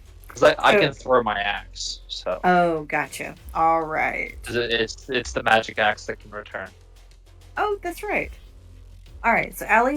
Because I can throw my axe, so. Oh, gotcha. All right. It's the magic axe that can return. Oh, that's right. All right. So, Allie,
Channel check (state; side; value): identical; both; correlation 1.00